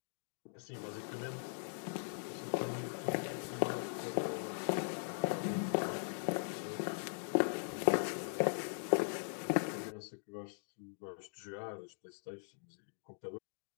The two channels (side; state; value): right; silent; digital silence